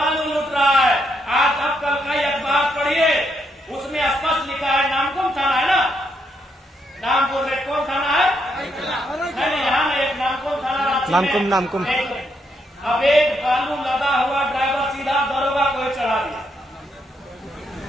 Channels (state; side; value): normal; both; correlation 0.77